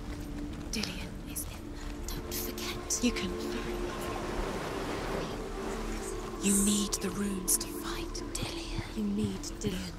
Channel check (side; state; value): both; identical; correlation 1.00